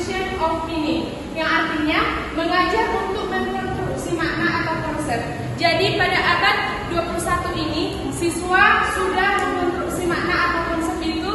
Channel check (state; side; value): identical; both; correlation 1.00